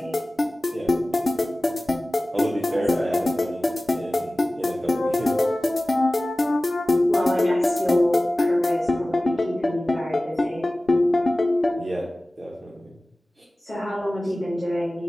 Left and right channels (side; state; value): both; normal; correlation 0.97